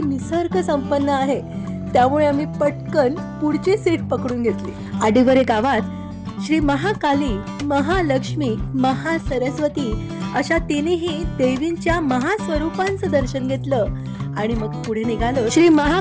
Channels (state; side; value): identical; both; correlation 1.00